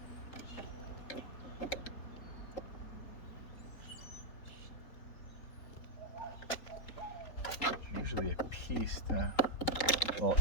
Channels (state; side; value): late; right; 3.8 ms